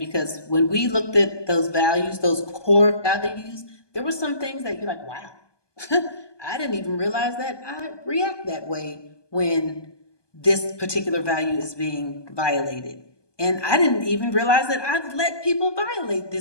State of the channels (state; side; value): late; right; 1.2 ms